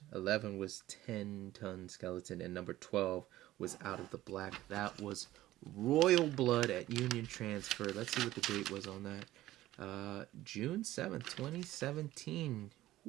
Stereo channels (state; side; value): quieter; left; 15.4 dB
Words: 11 was 10 Ton Skeleton, and number 12 was Out of the Black. That was Royal Blood at Union Transfer. Let's see what the date was on that. June 7th, 2017.